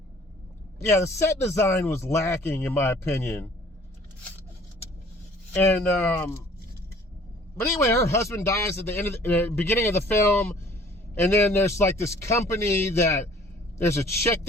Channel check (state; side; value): normal; both; correlation 0.54